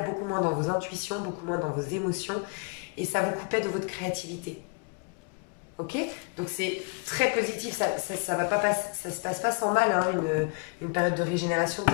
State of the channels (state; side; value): quieter; right; 33.8 dB